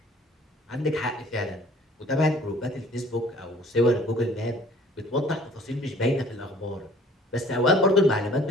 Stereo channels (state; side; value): normal; both; correlation 0.53